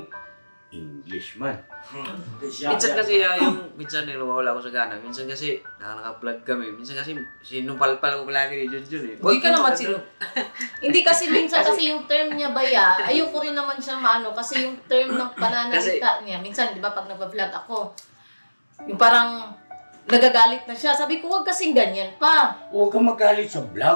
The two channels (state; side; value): inverted; both; correlation -1.00